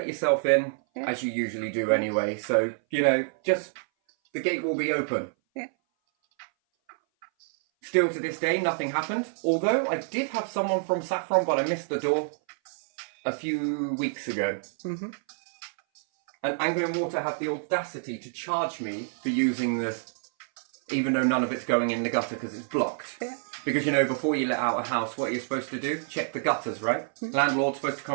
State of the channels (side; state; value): left; silent; 58 dB below the other